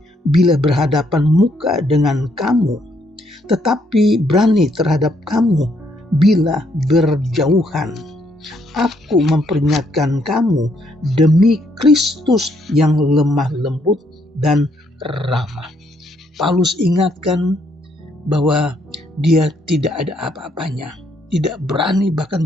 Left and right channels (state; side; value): normal; both; correlation 0.72